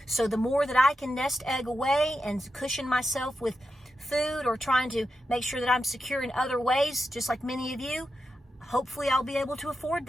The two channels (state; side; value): normal; both; correlation 0.88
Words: So the more that I can nest egg away and cushion myself with food, or trying to make sure that I'm secure in other ways, just like many of you, hopefully I'll be able to afford